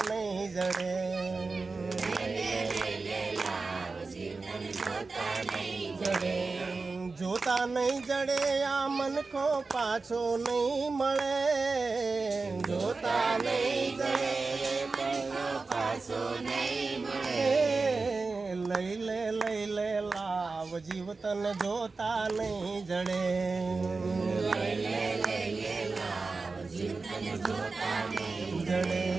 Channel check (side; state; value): left; quieter; 4.0 dB